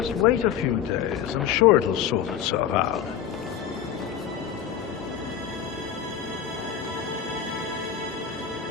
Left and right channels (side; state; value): right; quieter; 8.8 dB